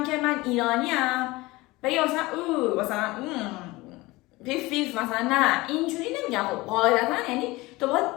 که من ایرانیم بگه مثلا مثلا پیف مثلا، نه اینجوری نمیگم. خب قاعدتا یعنی تو باید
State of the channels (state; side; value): quieter; right; 21.2 dB